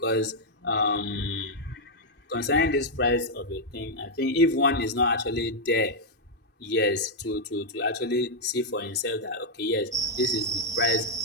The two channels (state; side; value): normal; both; correlation -0.03